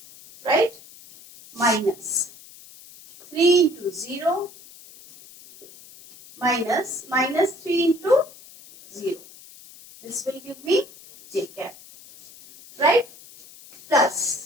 right? Minus 3 into 0 minus 3 into 0. This will give me j cap, right?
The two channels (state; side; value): noise; left; hiss, 21 dB below the sound